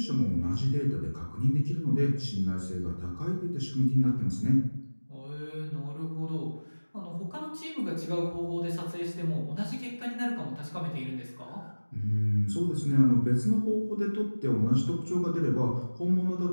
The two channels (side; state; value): both; inverted; correlation -1.00